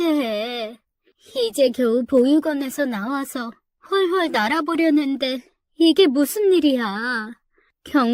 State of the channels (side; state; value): both; identical; correlation 1.00